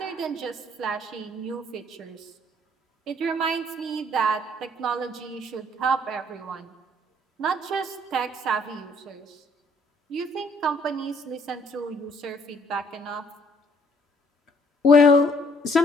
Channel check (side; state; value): both; normal; correlation 0.63